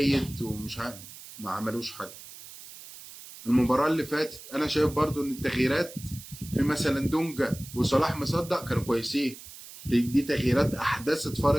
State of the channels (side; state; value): right; noise; hiss, 16 dB below the sound